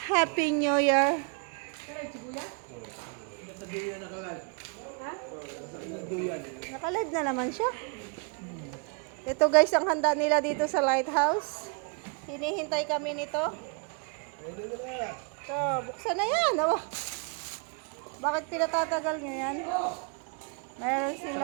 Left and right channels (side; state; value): left; quieter; 36.7 dB